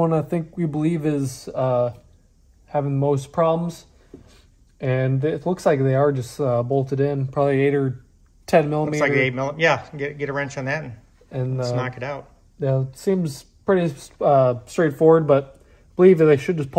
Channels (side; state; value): both; identical; correlation 1.00